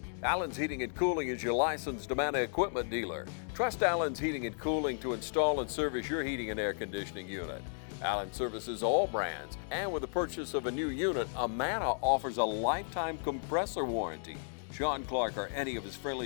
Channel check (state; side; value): silent; right; digital silence